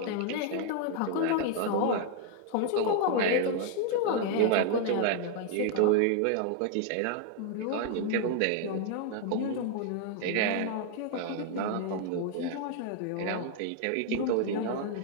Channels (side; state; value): both; different; correlation 0.00